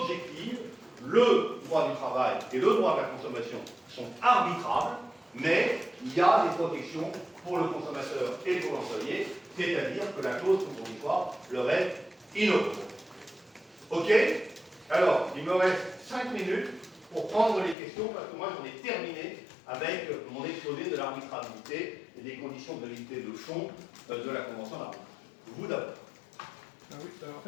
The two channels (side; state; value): right; drops out; at 17.8 s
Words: le droit du travail et le droit de la consommation sont arbitrables, mais il y a des protections pour le consommateur et pour l'employé, c'est-à-dire que la clause compromissoire leur est inopposable. Ok? Alors, il me reste 5 minutes pour prendre les questions, parce que moi j'en ai terminé avec mon exposé de l'arbitrabilité et des conditions de validité de fond de la Convention d'arbitrage. Vous d'abord. Oui, en